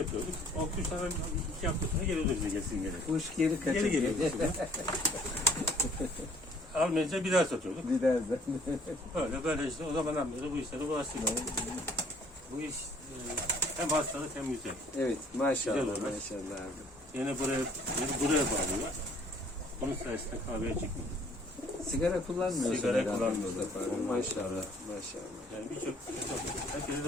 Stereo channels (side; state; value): both; normal; correlation 0.59